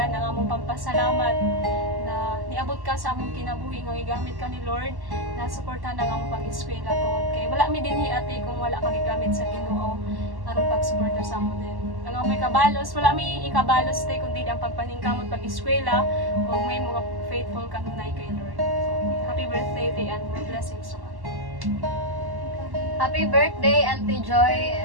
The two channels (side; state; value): left; late; 1.1 ms